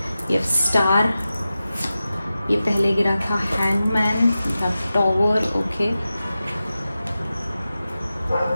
we have star, ये पहले गिरा था hangman, we have tower, okay,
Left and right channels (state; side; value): inverted; both; correlation -0.93